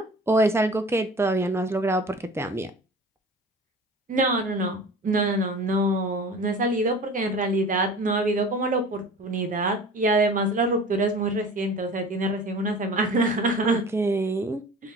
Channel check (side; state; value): both; normal; correlation 0.40